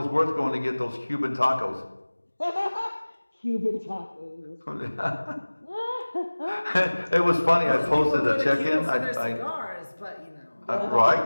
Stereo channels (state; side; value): inverted; both; correlation -1.00